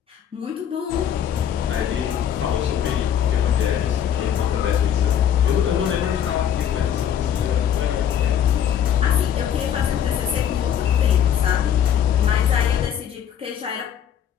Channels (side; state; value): right; quieter; 9.3 dB